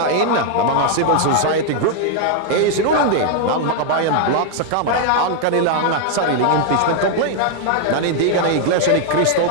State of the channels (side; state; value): both; different; correlation 0.00